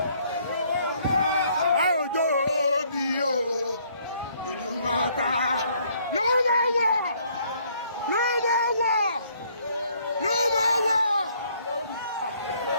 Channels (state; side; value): inverted; both; correlation -0.65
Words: Òjò bí o. Ìlú mọ̀ta ló máa wọ̀.